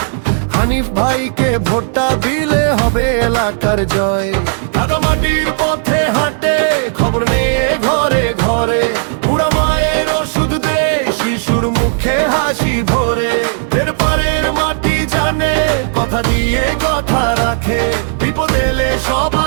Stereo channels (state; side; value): silent; left; digital silence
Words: হানিফ ভাইকে ভোটটা দিলে হবে এলাকার জয়। মাটির পথে হাঁটে খবর নিয়ে ঘরে ঘরে, বুড়া মায়ের ওষুধ দে শিশুর মুখে হাসি ভরে। এর পারের মাটি জানে কথা দিয়ে কথা রাখে, বিপদ এলে